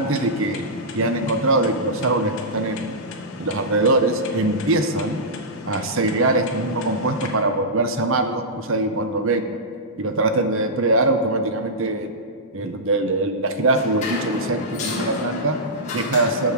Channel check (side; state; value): both; normal; correlation -0.14